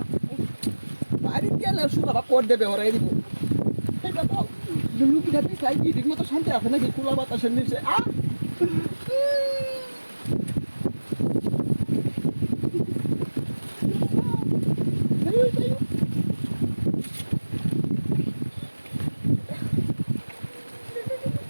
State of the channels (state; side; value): inverted; both; correlation -1.00